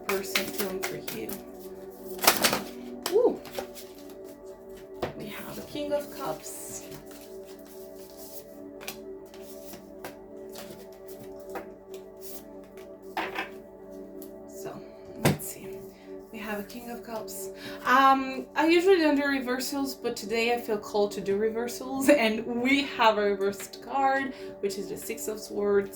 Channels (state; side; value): identical; both; correlation 1.00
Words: feeling for you? Ooh. We have the King of Cups. So, let's see. We have a King of Cups. I usually don't do reversals, but today I feel called to do reversals, and we have a reversed card, which is the Six of